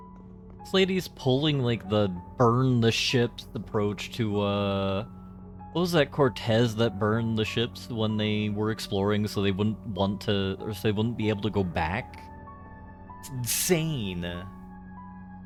This lady's pulling like the burn the ships approach to what was that, Cortez that burned the ships when they were exploring so they wouldn't want to, or so they wouldn't be able to go back? It's insane. A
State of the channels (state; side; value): identical; both; correlation 1.00